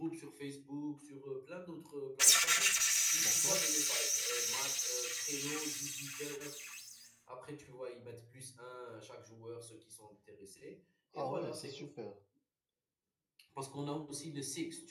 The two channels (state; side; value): identical; both; correlation 1.00